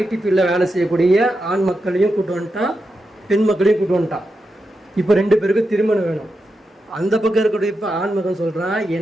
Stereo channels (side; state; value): both; normal; correlation 0.88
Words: ஃபீல்டில் வேலை செய்யக்கூடிய ஆண் மக்களையும் கூட்டு வந்துட்டான், பெண் மக்களையும் கூட்டு வந்துட்டான். இப்போ 2 பேருக்கும் திருமணம் வேணும். அந்த பக்கம் இருக்கக்கூடிய இப்போ ஆண் மகன் சொல்கிறான்,